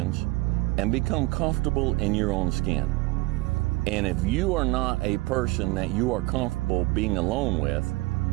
And become comfortable in your own skin. And if you are not a person that you are comfortable being alone with,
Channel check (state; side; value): quieter; left; 22.1 dB